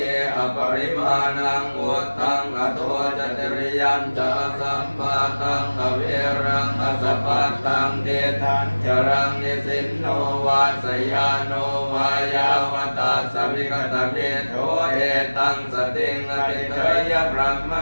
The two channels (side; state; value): both; inverted; correlation -1.00